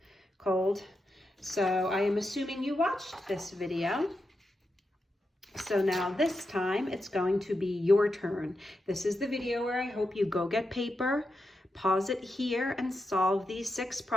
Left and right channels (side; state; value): both; normal; correlation 0.87